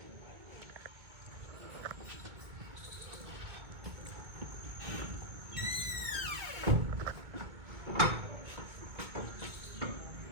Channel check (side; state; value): left; late; 2.2 ms